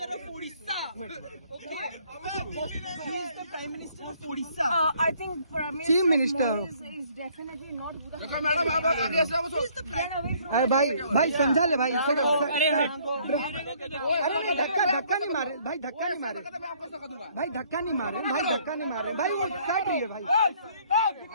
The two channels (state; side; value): inverted; both; correlation -0.62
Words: Prime minister of Orissa. I think Chief Minister is definitely not. Madam आप आगे से आओ। अरे भाई समझा ले भाई। अरे धक्का नहीं मारे भाई, धक्का नहीं मारे भाई, धक्का नहीं मारे भाई, धक्का नहीं मारे भाई, वो काट रही है भाई।